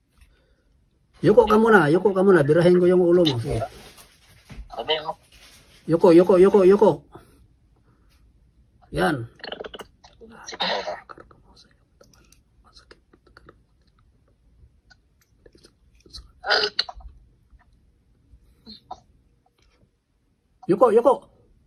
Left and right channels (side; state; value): both; identical; correlation 1.00